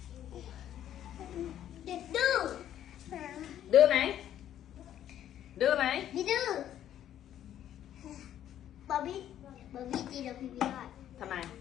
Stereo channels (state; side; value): quieter; right; 11.1 dB